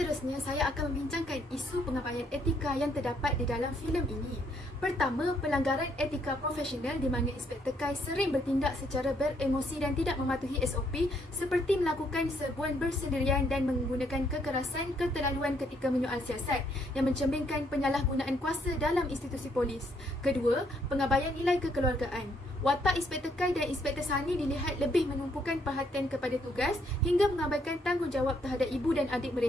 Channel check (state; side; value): normal; both; correlation 0.70